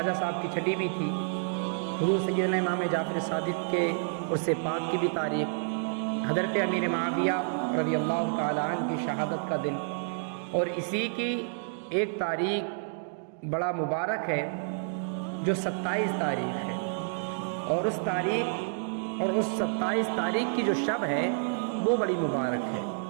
صاحب کی چھٹی بھی تھی، حضور سیدنا امام جعفر صادق کے عرس پاک کی بھی تاریخ، حضرت امیر معاویہ رضی اللہ تعالیٰ عنہ کی شہادت کا دن، اور اسی کی ایک تاریخ بڑا مبارک ہے جو 27 تاریخ ہے، اور اس تاریخ اور اس 27 تاریخ کی جو شب ہے وہ بڑی مبارک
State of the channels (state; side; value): silent; left; digital silence